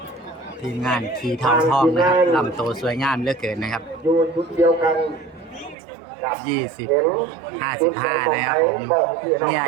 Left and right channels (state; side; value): drops out; left; at 5.8 s